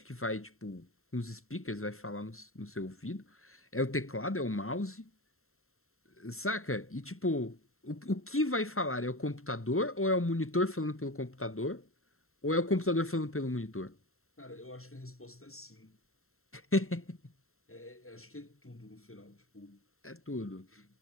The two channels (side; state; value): right; late; 0.62 ms